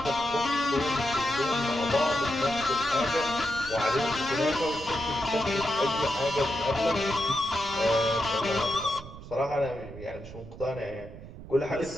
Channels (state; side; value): noise; right; rumble, 14 dB below the sound